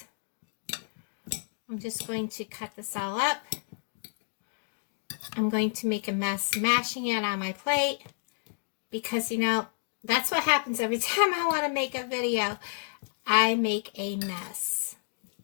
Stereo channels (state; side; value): silent; right; digital silence